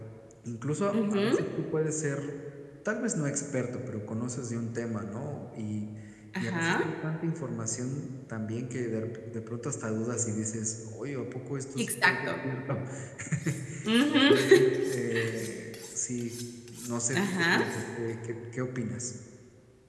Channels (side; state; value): both; identical; correlation 1.00